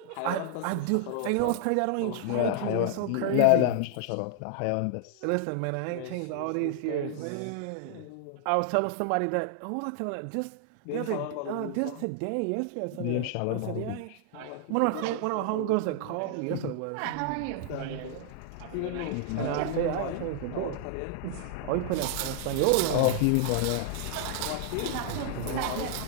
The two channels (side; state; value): both; different; correlation -0.01